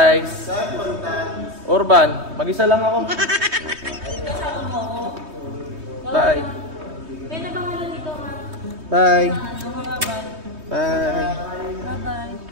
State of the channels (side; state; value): left; late; 3.2 ms